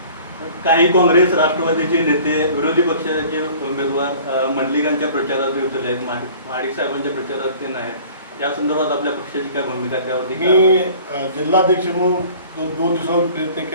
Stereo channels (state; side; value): inverted; both; correlation -0.48